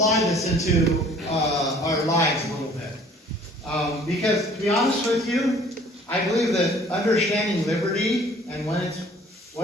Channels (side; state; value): both; normal; correlation 0.53